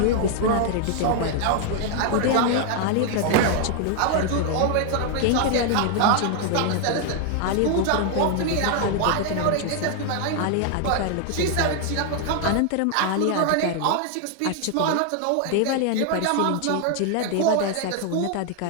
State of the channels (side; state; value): both; different; correlation 0.00